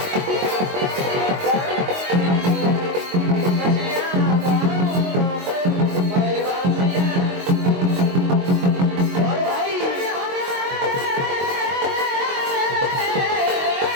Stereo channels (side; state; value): left; late; 22 ms